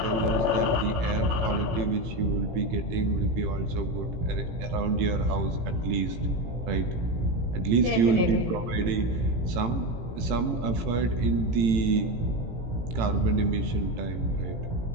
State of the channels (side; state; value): left; late; 18 ms